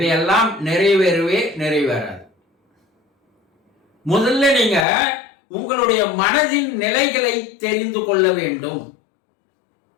நிறைவேறாது. முதல்ல நீங்க உங்களுடைய மனதின் நிலைகளை தெரிந்து கொள்ள வேண்டும்.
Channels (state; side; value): drops out; right; at 4.9 s